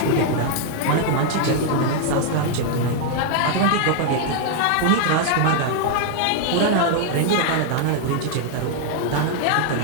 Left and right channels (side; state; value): both; different; correlation 0.00